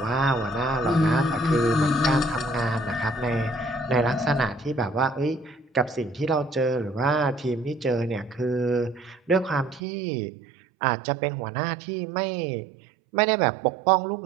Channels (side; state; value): left; drops out; at 9.8 s